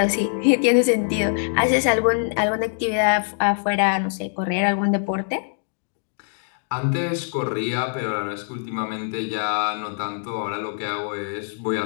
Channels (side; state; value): right; silent; digital silence